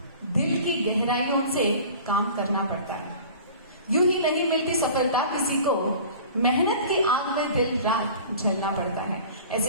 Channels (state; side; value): inverted; both; correlation -0.43